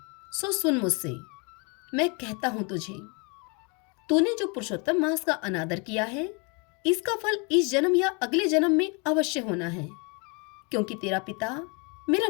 सो सुन मुझसे। मैं कहता हूं तुझे, तूने जो पुरुषोत्तम मास का अनादर किया है, इसका फल इस जन्म या अगले जन्म में अवश्य होना है। क्योंकि तेरा पिता मेरा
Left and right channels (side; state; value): right; quieter; 32.3 dB